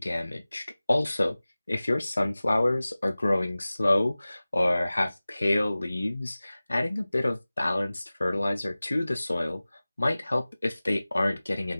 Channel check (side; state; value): both; inverted; correlation -0.98